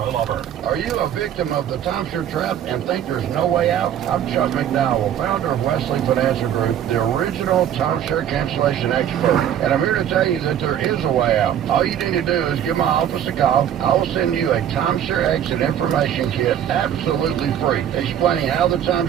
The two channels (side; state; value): left; quieter; 10.1 dB